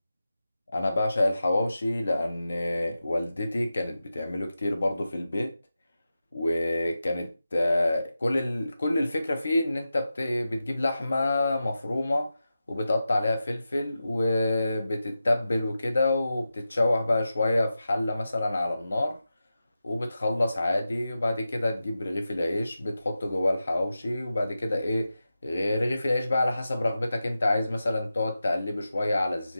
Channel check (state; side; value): inverted; both; correlation -0.92